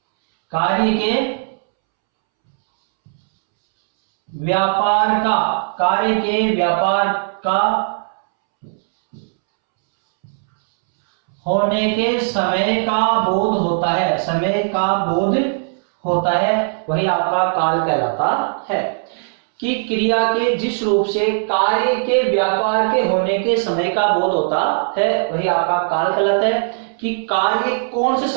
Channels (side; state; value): left; silent; 67 dB below the other